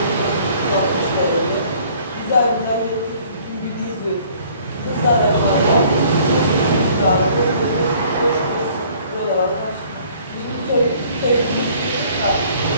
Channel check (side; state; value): both; inverted; correlation -0.56